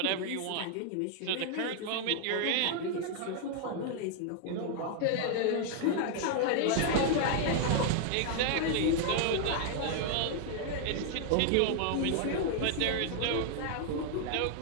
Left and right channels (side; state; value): both; different; correlation 0.00